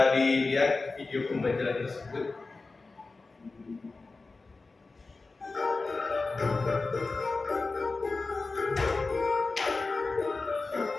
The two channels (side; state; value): right; quieter; 3.7 dB